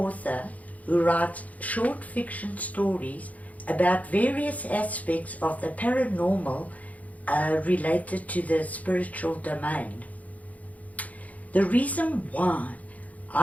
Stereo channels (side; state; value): right; late; 0.072 ms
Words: who writes short fiction stories about various aspects of the paranormal related to the spiritual domain. The reason why